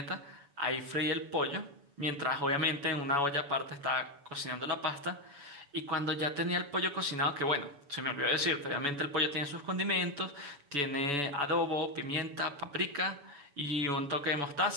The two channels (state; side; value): late; left; 7.0 ms